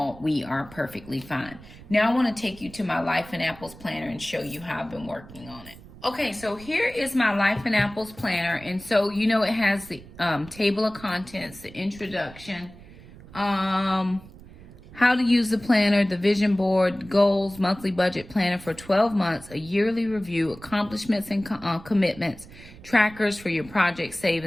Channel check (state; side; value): noise; right; rumble, 19 dB below the sound